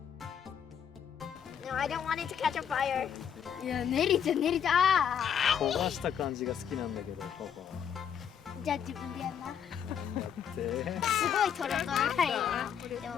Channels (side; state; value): right; quieter; 8.3 dB